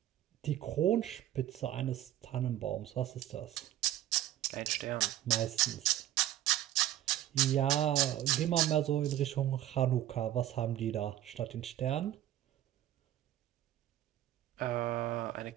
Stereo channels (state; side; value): quieter; left; 12.9 dB